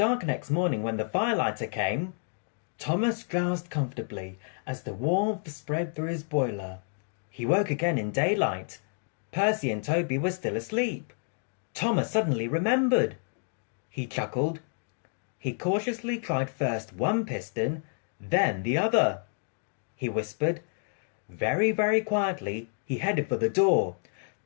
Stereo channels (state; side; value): silent; right; 58 dB below the other